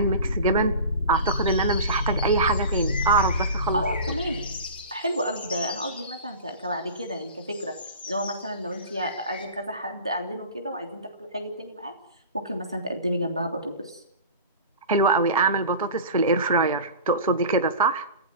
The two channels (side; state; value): both; inverted; correlation -0.37